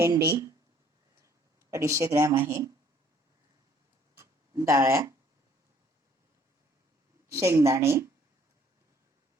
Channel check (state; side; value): normal; both; correlation 0.60